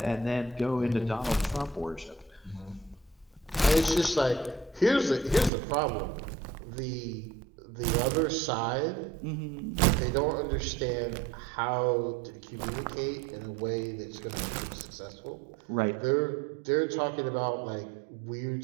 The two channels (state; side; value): drops out; left; at 5.5 s